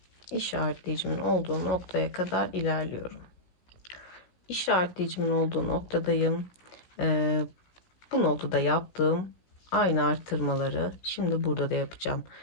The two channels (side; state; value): right; late; 16 ms